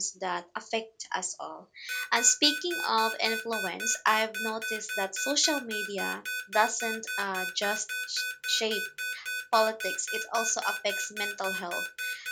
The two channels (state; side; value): identical; both; correlation 1.00